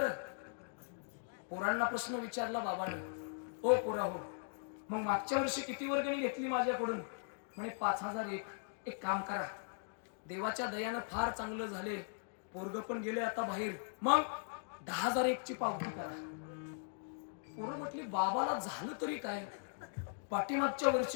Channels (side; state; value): right; silent; digital silence